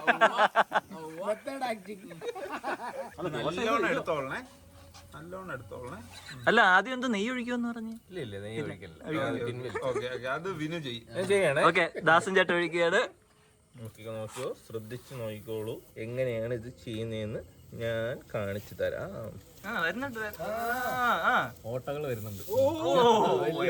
നല്ലോണം എടുത്തോളണേ, നല്ലോണം എടുത്തോളണേ. അല്ല ആദ്യം എന്താ നെയ്യ് ഒഴിക്കുമെന്ന് പറഞ്ഞു. ഇല്ല നെയ്യ് ഒഴിക്കില്ല. ഓക്കെ അത് വിനു ചെയ്യും. ചെയ്യണേ. ഓക്കെ, ദാസൻ ചേട്ടൻ ഒഴിക്കുകയാണ്. നോക്കിയോ, ശ്രദ്ധിച്ച് നോക്കിക്കോളൂ. എങ്ങനെയാണ് ഇത് ചെയ്യുന്നതെന്ന് ഞാൻ കാണിച്ചു തരാം. ഓട്ടകൾ വരുന്നുണ്ട്.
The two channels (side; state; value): both; identical; correlation 1.00